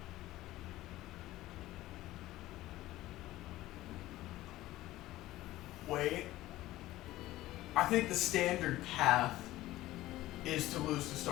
Wait. I think the standard path is to lose to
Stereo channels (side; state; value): right; quieter; 16.2 dB